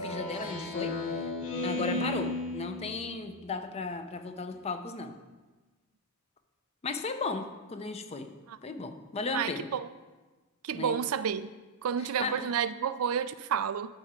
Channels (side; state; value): both; normal; correlation -0.05